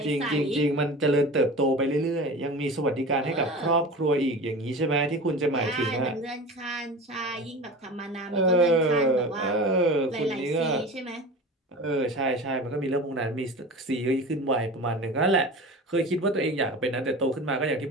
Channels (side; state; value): both; normal; correlation 0.33